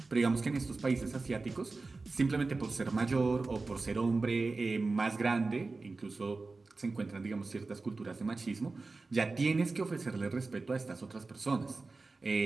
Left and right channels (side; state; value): left; quieter; 3.7 dB